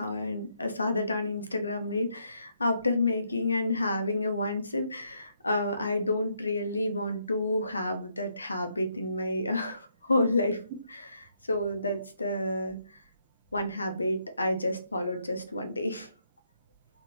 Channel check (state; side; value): inverted; both; correlation -0.74